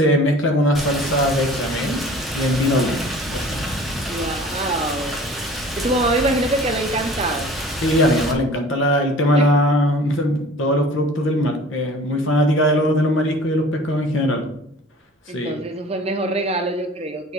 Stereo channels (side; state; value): both; normal; correlation 0.46